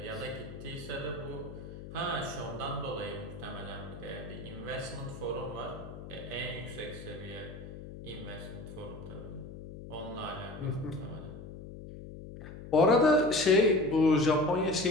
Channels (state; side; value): noise; left; hum, 12 dB below the sound